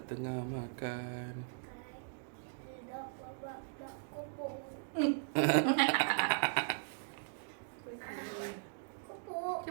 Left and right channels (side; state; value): left; silent; digital silence